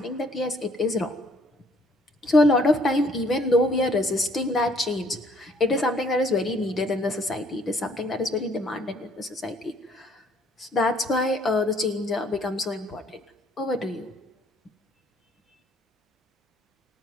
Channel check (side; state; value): both; normal; correlation 0.62